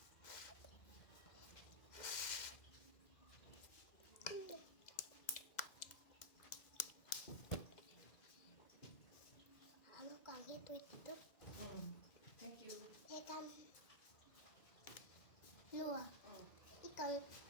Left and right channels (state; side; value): late; right; 2.0 ms